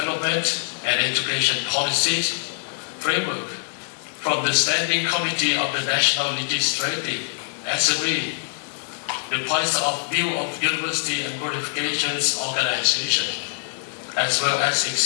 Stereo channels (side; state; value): right; silent; digital silence